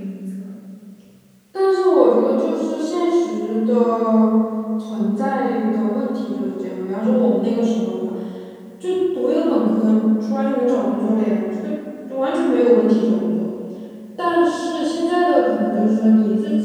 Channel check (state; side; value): identical; both; correlation 1.00